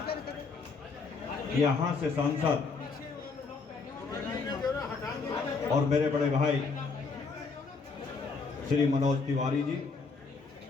यहाँ से सांसद और मेरे बड़े भाई श्री मनोज तिवारी जी,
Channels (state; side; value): quieter; right; 4.5 dB